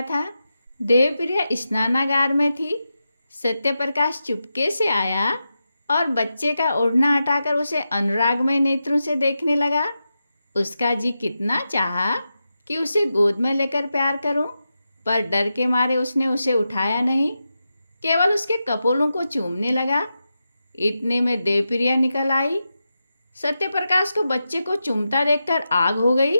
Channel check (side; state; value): both; inverted; correlation -0.90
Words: था। देवप्रिया स्नानागार में थी। सत्यप्रकाश चुपके से आया और बच्चे का ओढ़ना हटाकर उसे अनुरागमय नेत्रों से देखने लगा। उसका जी कितना चाहा कि उसे गोद में लेकर प्यार करूं, पर डर के मारे उसने उसे उठाया नहीं, केवल उसके कपोलों को चूमने लगा। इतने में देवप्रिया निकल आई। सत्यप्रकाश को बच्चे को चूमता देखकर आग हो गई।